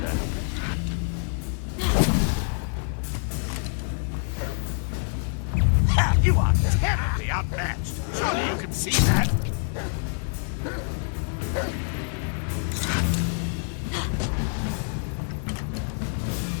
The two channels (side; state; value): right; silent; 58 dB below the other